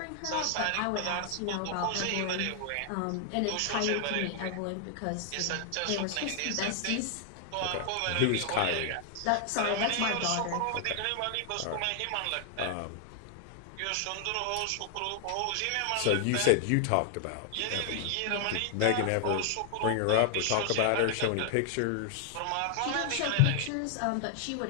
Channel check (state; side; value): different; both; correlation 0.00